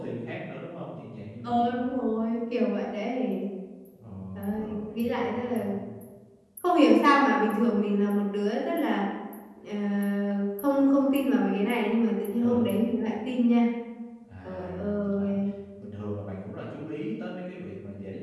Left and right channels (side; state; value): both; identical; correlation 1.00